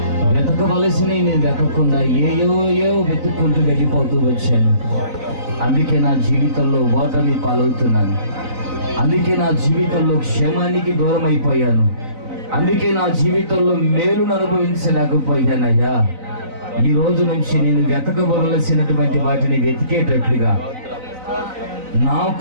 వెతకవలసినవి నేను వెతకకుండా ఏయో వెతుక్కుంటూ వెళ్ళిపోతూ వచ్చాను. అందుకే నా జీవితంలో ఓటమి పాలవుతున్నాను. అందుకే నా జీవితంలో క్షేమానికి దూరం అయిపోయాను. అందుకే నా జీవితంలో మేలును అనుభవించలేకపోయానయ్యా. ఈ రోజు నుంచి నేను వెతకవలసినటువంటి వాటిని వెతికేటట్లుగా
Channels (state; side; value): late; left; 3.9 ms